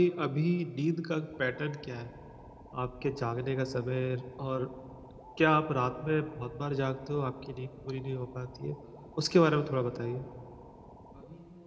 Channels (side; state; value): both; identical; correlation 1.00